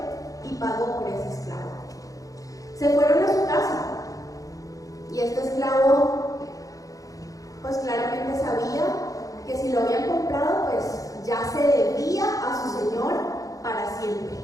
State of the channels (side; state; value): right; late; 0.17 ms